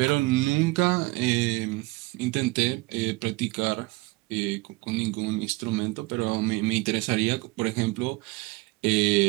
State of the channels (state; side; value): quieter; left; 22.6 dB